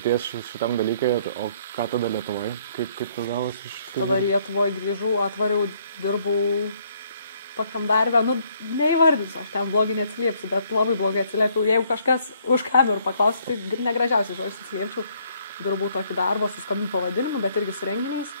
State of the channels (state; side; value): inverted; both; correlation -0.66